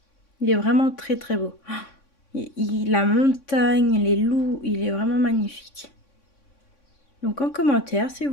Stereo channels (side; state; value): right; late; 3.6 ms